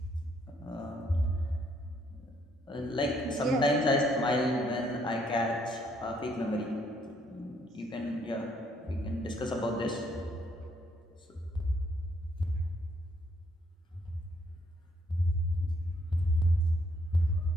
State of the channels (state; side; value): normal; both; correlation 0.69